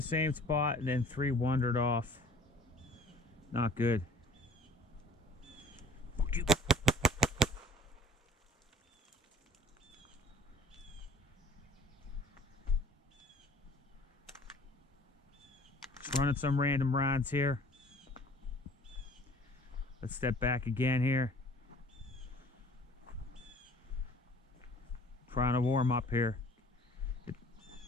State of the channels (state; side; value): normal; both; correlation 0.51